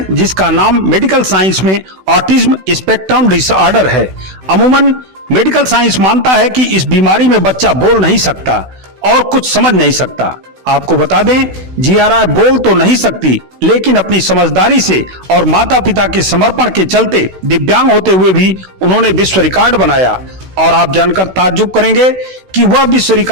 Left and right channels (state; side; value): late; left; 16 ms